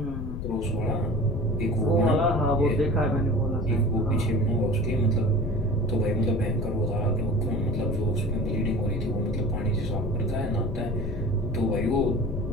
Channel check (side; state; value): left; noise; rumble, 5 dB below the sound